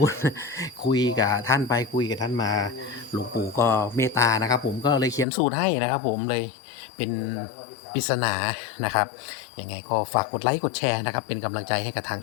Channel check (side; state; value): right; drops out; at 5.2 s